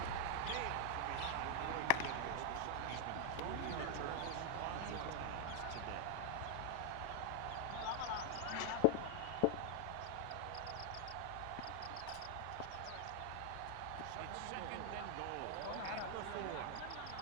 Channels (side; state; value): both; different; correlation 0.00